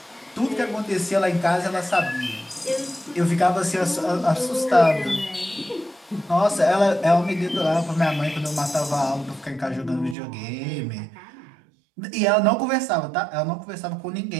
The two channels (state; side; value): drops out; left; at 10.2 s